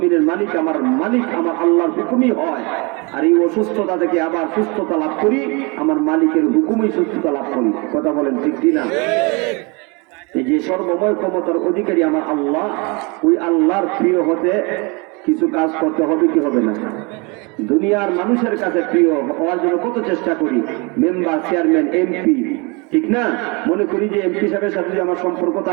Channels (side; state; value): left; quieter; 29.4 dB